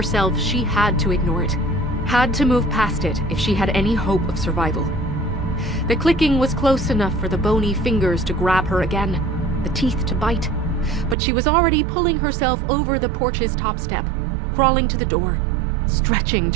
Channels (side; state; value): left; drops out; at 11.2 s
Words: she had to ignore it, had to move past it if she had any hope of survival. The clicking was close enough for the bony fingers to grab her again, the teeth to bite, but she was already pulling herself over the porch's top step, crawling to the door, stretching